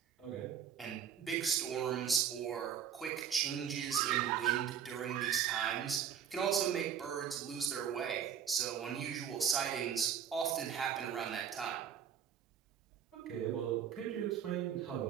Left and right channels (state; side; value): quieter; left; 8.4 dB